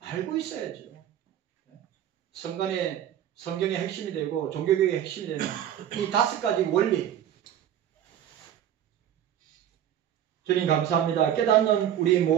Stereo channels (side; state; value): left; quieter; 10.5 dB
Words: 있어야죠. 성간의 성경의 핵심이 되고 종교개혁의 핵심이 되는 이 5가지 원리. 주님 감사합니다. 깨닫는 우리